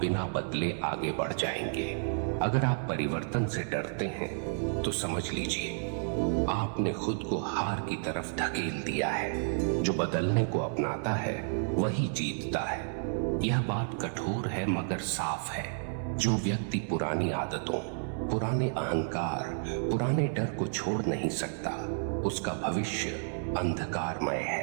बिना बदले आगे बढ़ जाएंगे? अगर आप परिवर्तन से डरते हैं तो समझ लीजिए आपने खुद को हार की तरफ धकेल दिया है। जो बदलने को अपनाता है वही जीतता है। यह बात कठोर है मगर साफ है। जो व्यक्ति पुरानी आदतों, पुराने अहंकार, पुराने डर को छोड़ नहीं सकता, उसका भविष्य अंधकारमय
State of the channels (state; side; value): silent; left; 57 dB below the other